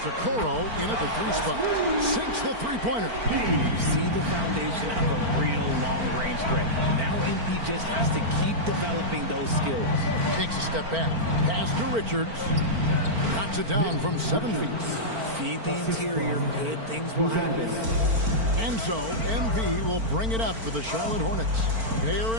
Okoro in at the 3 spot. Sinks the three-pointer. You see the foundation of a real long-range threat. Now MP just has to keep developing those skills. Takes a step back. Pass to Richards. Knocks it down from 7 feet. Feed the interior, good things will happen. And so, MV will bring it up for the Charlotte Hornets. They're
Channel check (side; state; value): left; late; 4.4 ms